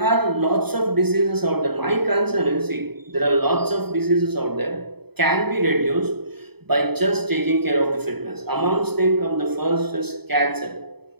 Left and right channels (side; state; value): left; late; 0.97 ms